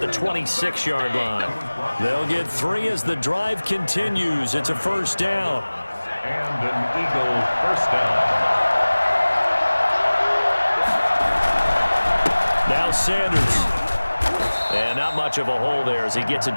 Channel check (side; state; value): both; inverted; correlation -1.00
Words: 26-yard line. They'll get 3 as the drive continues. It's a first down. and an Eagle first down. Now Sanders. And not much of a hole there as he gets it